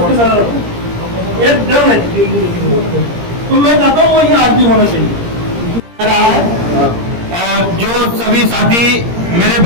नजर रखो। ये डर है तो मैं चाहता हूँ वो ये आज भी होना चाहिए। और जो सभी साथी मेरे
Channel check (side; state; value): left; late; 17 ms